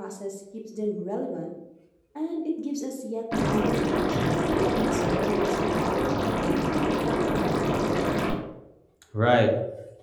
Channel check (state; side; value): identical; both; correlation 1.00